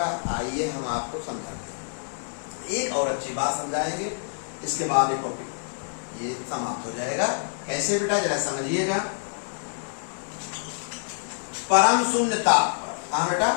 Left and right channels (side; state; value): right; silent; digital silence